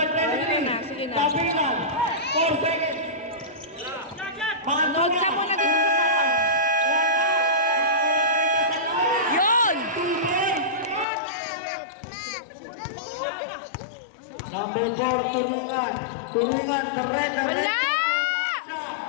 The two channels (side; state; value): right; drops out; at 11.1 s